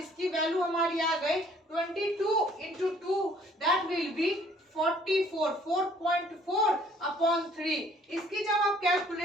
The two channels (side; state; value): both; normal; correlation 0.59